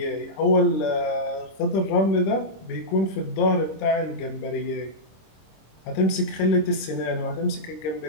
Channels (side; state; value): right; late; 26 ms